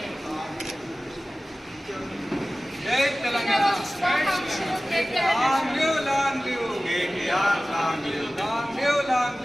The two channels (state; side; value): normal; both; correlation 0.97